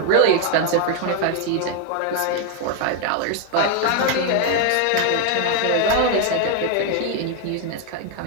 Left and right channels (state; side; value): different; both; correlation 0.00